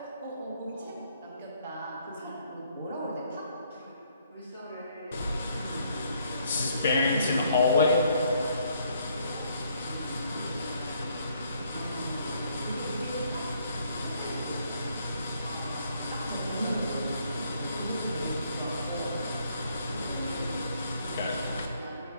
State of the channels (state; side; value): inverted; both; correlation -0.68